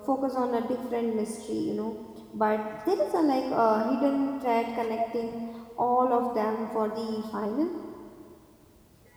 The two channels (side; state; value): both; identical; correlation 1.00